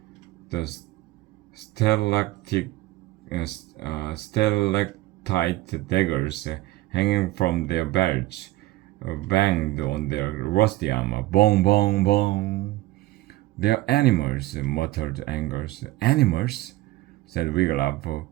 The stalactite daggers hanging from their belts banged on their rusty armor. Bong, bong, bong. They're animals, muttered Angus. Animals? Said Wiglaf,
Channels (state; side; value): quieter; left; 17.2 dB